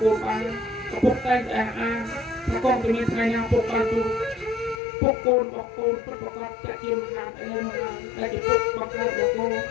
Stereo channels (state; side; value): drops out; right; at 4.8 s